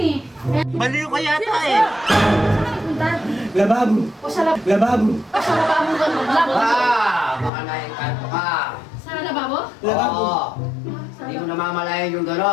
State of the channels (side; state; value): right; drops out; at 7.5 s